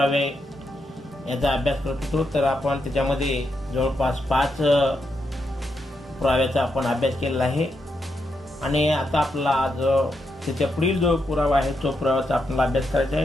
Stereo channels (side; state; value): both; normal; correlation 0.82